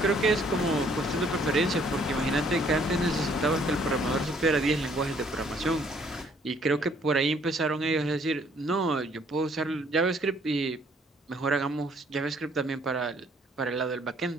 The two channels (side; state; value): both; normal; correlation 0.63